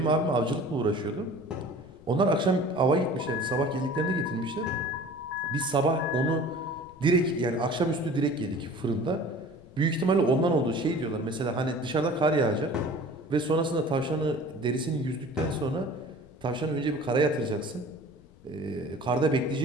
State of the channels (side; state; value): left; noise; rumble, 25 dB below the sound